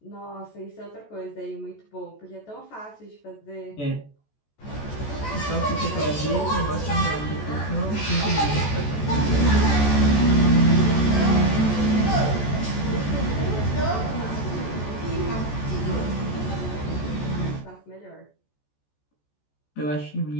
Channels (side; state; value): right; late; 14 ms